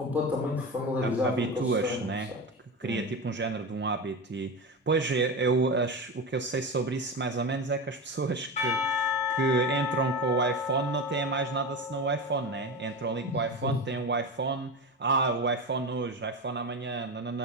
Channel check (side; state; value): both; normal; correlation 0.23